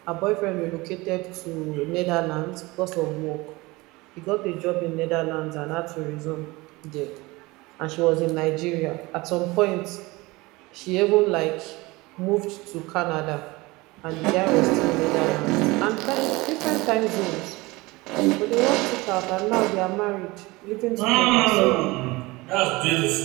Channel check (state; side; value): quieter; left; 22.3 dB